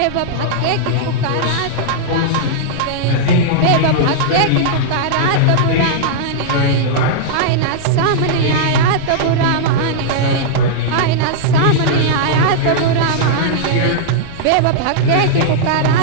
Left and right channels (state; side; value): different; both; correlation -0.02